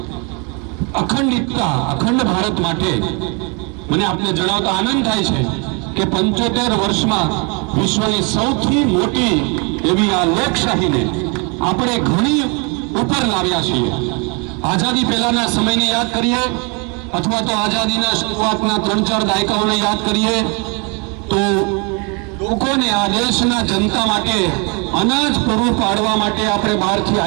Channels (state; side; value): quieter; left; 33.5 dB